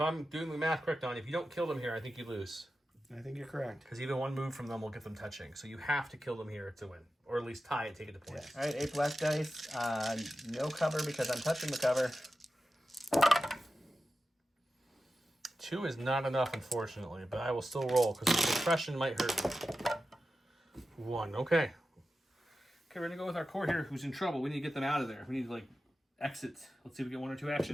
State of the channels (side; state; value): both; normal; correlation 0.92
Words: I'm doing the math correct on, if you don't kill them here, I think you lose. I think you're correct. Because even 1 move from them will get them touching. So you have to kill them here to win. Or at least tie it, take it to points. Yeah. All right, 8 black dice. No cover because I'm touching the cover. 2 is not enough, unfortunately, but I will still roll because the suppression might hurt me. 1, okay. Okay, we're going to go with our core here who's in trouble. We need to get them out of there. We need to, exit. Let's see if we get 1 or 2